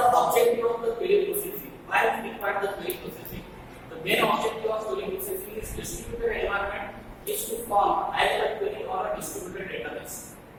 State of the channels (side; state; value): both; identical; correlation 1.00